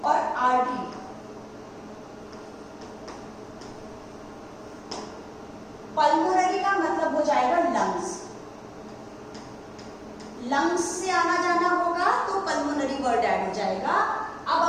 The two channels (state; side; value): identical; both; correlation 1.00